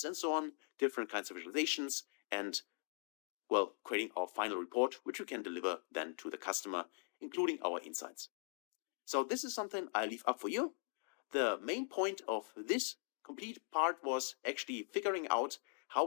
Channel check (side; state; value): right; silent; 50 dB below the other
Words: and so on, different kinds of visualizations, and well, creating our final report, which we can deliver then to the customer, including our insights. So this is something I leave up for you. The main point of this complete part was actually figuring out how